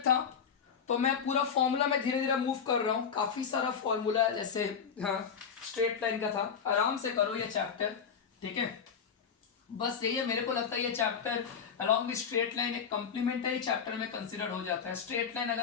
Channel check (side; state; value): right; quieter; 6.9 dB